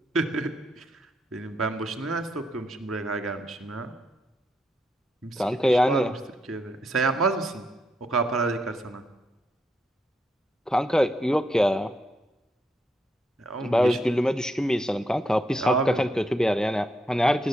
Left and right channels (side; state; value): both; normal; correlation 0.79